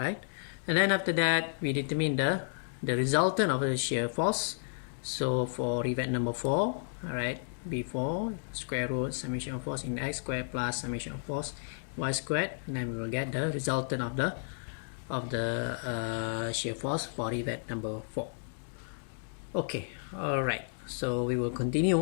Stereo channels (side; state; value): right; silent; digital silence